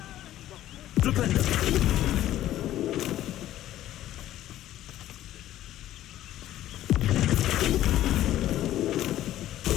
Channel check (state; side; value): quieter; right; 13.4 dB